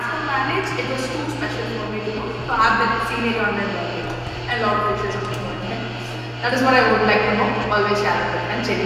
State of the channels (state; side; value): identical; both; correlation 1.00